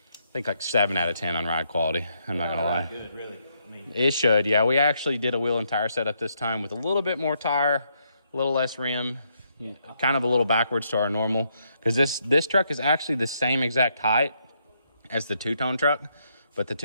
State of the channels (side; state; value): both; inverted; correlation -0.76